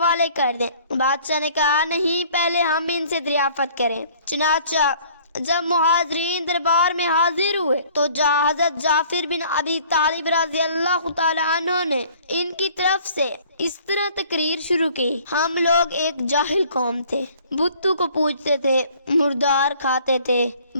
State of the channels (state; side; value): inverted; both; correlation -0.55